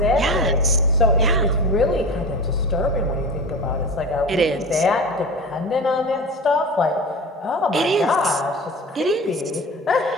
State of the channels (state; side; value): normal; both; correlation 0.31